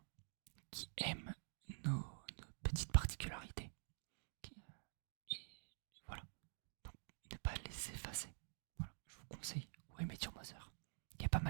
qui aime nos petites particularités. Et voilà. Donc, ne pas les effacer. Voilà, je vous conseille How I Met Your Mother. Il y a pas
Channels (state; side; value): silent; left; digital silence